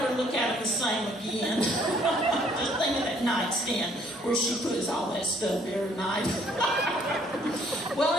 look at them the same again. Just think of that nightstand where she puts all that stuff every night. Well,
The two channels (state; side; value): normal; both; correlation 0.63